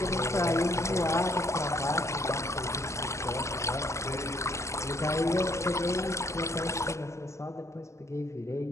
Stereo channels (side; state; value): right; late; 0.14 ms